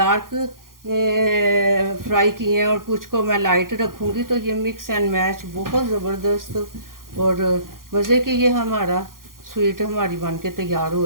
फ्राई किए हैं और कुछ को मैं लाइट रखूँगी। तो ये मिक्स एंड मैच बहुत ज़बरदस्त और मज़े की ये हमारा स्वीट हमारी बन के तैयार हो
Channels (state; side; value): late; left; 0.91 ms